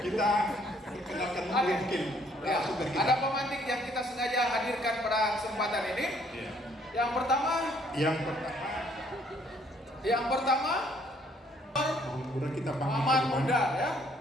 kita kenalkan mungkin. Ya, ada pemantik yang kita sengaja hadirkan pada kesempatan ini. Ya. Yang pertama, udah kita panggil Muhammad Muda ya.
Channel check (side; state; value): both; normal; correlation 0.64